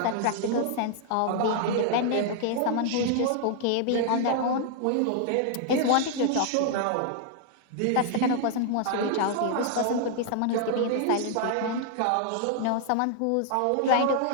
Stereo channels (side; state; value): both; different; correlation 0.00